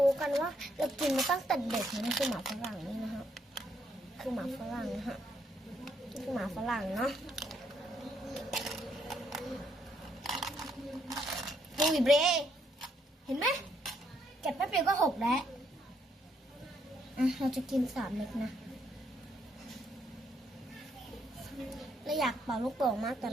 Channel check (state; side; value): normal; both; correlation 0.73